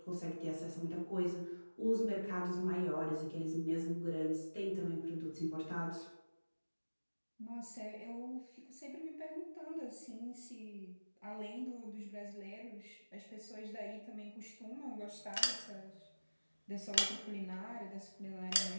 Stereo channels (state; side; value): inverted; both; correlation -1.00